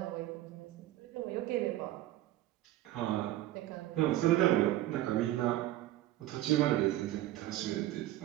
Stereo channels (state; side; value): quieter; left; 14.9 dB